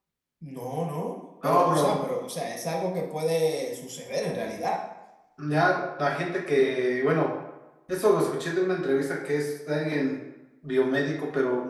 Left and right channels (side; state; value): both; identical; correlation 1.00